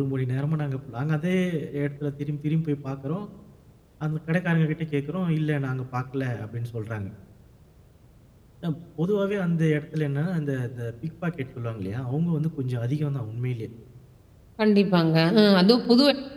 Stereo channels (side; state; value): both; identical; correlation 1.00